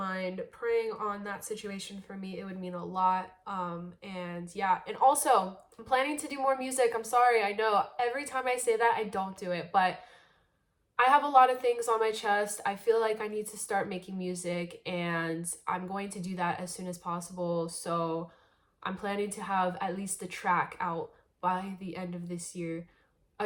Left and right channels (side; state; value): both; identical; correlation 1.00